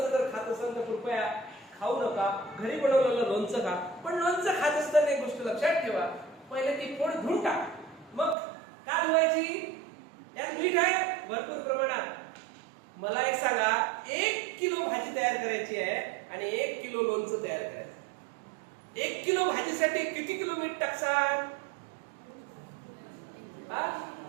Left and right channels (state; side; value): drops out; left; at 8.3 s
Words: जर खात असेल तर कृपया खाऊ नका, घरी बनवलेलं लोणचं खा. पण लोणचं खात असताना एक गोष्ट लक्षात ठेवा, पहिले ती फोड धुवून टाक, मग का धुवायची, यात मीठ आहे भरपूर प्रमाणात. मला एक सांगा, 1 किलो भाजी तयार करायची आहे आणि 1 किलो लोणचं तयार करायचं. 1 किलो भाजीसाठी किती किलो मीठ टाकसाल?